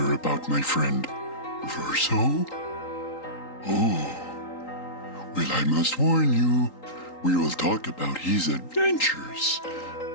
about my friend Verso? Oh, well, I must warn you, we will talk about his adventures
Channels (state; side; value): late; right; 3.8 ms